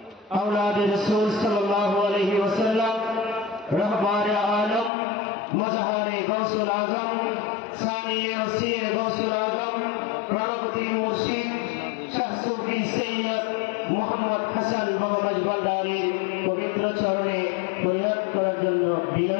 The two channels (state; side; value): drops out; right; at 4.9 s